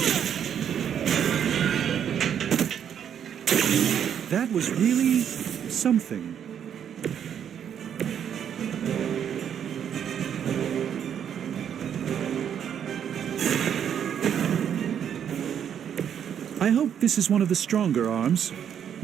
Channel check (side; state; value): left; quieter; 8.8 dB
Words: That was really something. I hope this is one of the stronger arms.